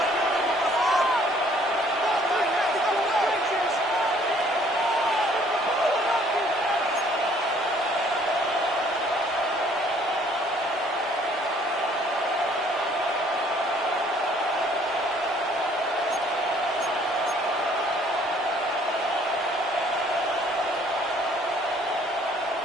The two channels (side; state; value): both; normal; correlation 0.60